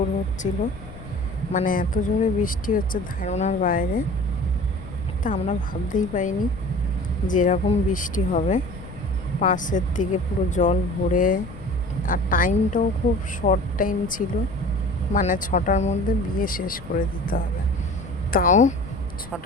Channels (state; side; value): noise; left; rumble, 15 dB below the sound